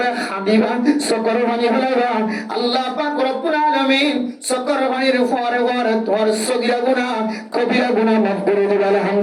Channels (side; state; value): both; identical; correlation 1.00